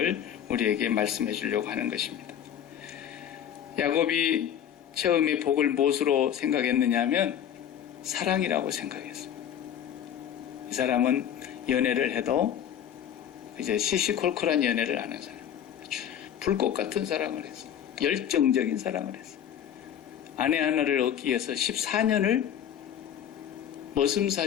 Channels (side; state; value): right; quieter; 9.6 dB